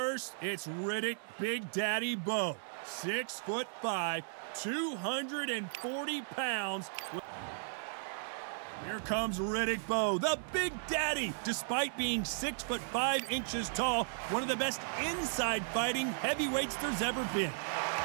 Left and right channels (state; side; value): silent; left; 54 dB below the other